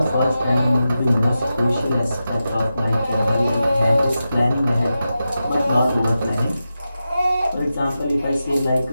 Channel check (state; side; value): inverted; both; correlation -0.91